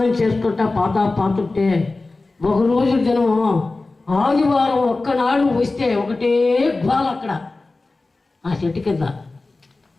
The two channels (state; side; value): quieter; right; 3.4 dB